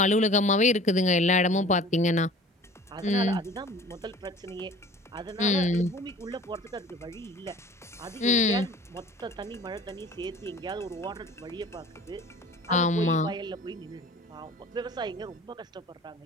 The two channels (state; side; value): normal; both; correlation 0.45